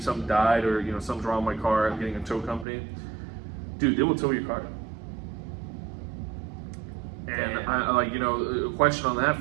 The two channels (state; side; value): drops out; left; at 2.7 s